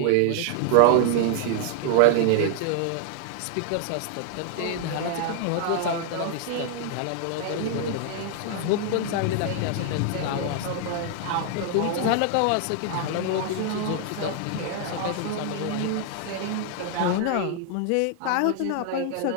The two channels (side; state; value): both; different; correlation 0.00